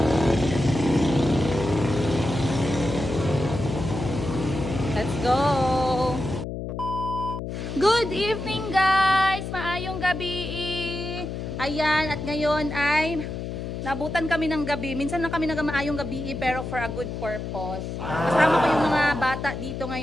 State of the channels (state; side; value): noise; left; hum, 6 dB below the sound